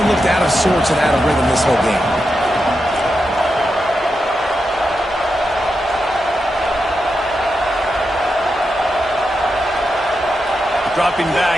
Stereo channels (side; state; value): both; normal; correlation 0.87